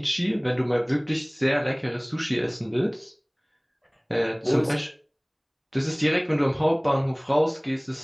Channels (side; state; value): both; identical; correlation 1.00